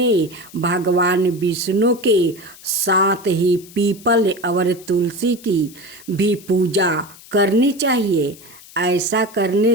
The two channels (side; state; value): left; noise; hiss, 21 dB below the sound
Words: भगवान विष्णु के साथ ही पीपल और तुलसी की भी पूजा करनी चाहिए। ऐसा करने